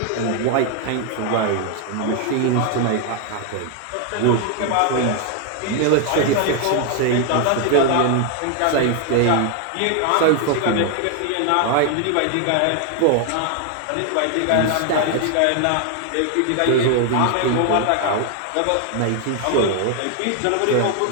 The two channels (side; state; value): both; different; correlation 0.01